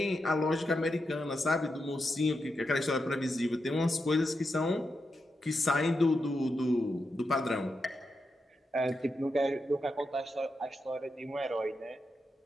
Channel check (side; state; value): both; normal; correlation 0.86